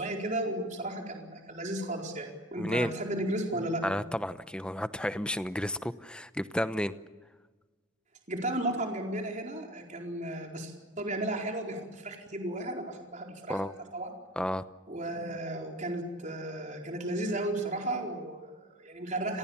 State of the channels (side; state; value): both; normal; correlation 0.42